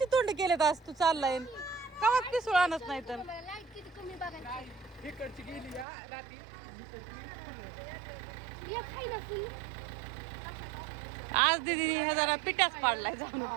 तोंड केलेत आज तू चाललाय का पिसूळ आणत नाही तर. लाईट किती कमी बघायची. इकडची गेली या रात्री एक खाई ना फुल. आज दीदी हे जरा पिठाच पाडलाय जाऊन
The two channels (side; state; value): left; drops out; at 5.9 s